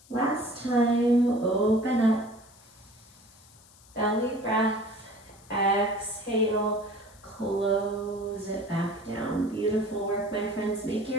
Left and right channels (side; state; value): left; noise; hiss, 25 dB below the sound